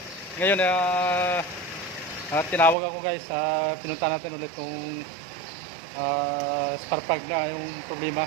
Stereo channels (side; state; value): left; drops out; at 2.8 s